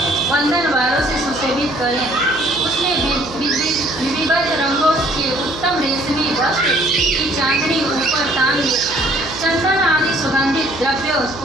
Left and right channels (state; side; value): noise; right; hum, 16 dB below the sound